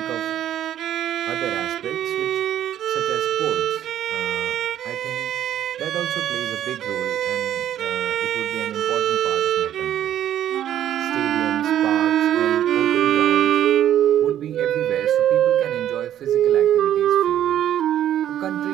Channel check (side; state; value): left; quieter; 11.2 dB